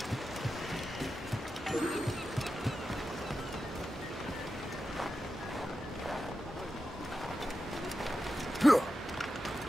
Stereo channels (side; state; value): both; normal; correlation 0.90